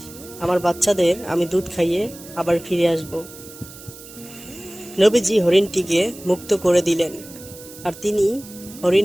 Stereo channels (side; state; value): right; noise; hiss, 17 dB below the sound